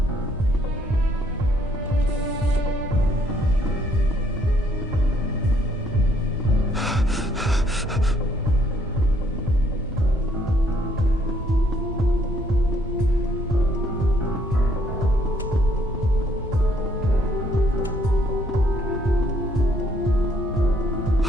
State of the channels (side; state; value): both; normal; correlation 0.67